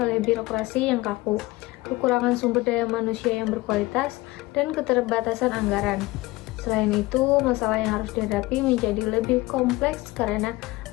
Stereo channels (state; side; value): quieter; right; 20.5 dB